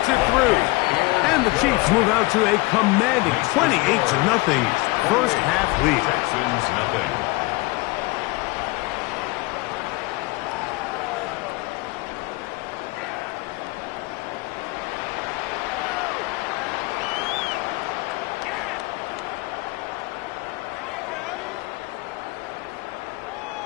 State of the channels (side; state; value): right; quieter; 23.5 dB